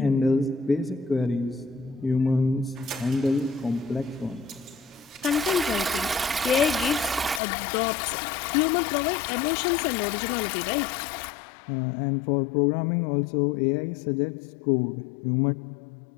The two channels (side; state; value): right; drops out; at 7.4 s